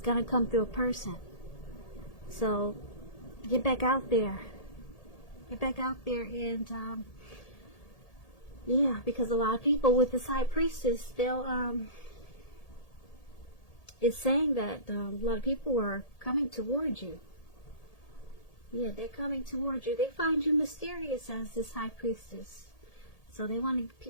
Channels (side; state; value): right; late; 1.8 ms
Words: going to come through a person. So get back out there. Get back out there, and yeah, because a lot of people with this High Priestess, it's saying that a lot of people are coming towards you. Yeah, they're coming towards you. They find you mysterious as this High Priestess. So